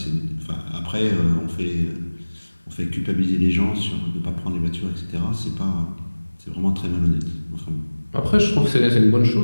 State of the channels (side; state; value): both; inverted; correlation -1.00